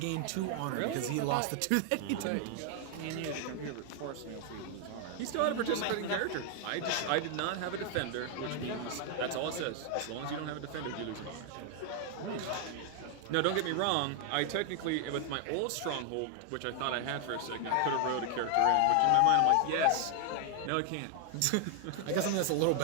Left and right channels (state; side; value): different; both; correlation 0.00